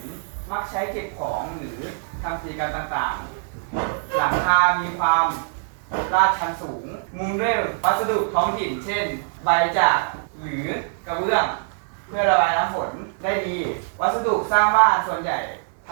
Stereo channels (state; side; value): silent; left; digital silence